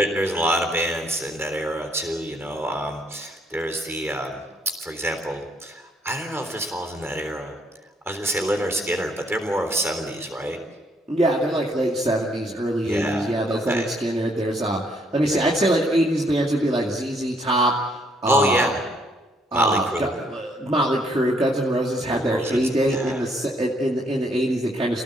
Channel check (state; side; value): normal; both; correlation 0.69